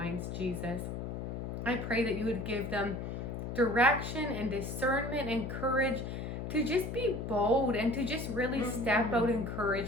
Jesus. I pray that you would give them direction and discernment and courage to just be bold and to just really step out in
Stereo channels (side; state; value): left; noise; hum, 5 dB below the sound